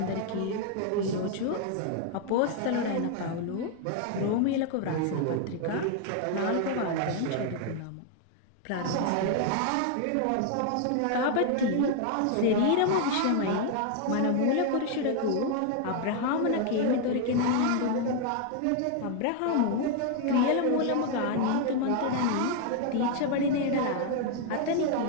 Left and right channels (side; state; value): both; different; correlation 0.00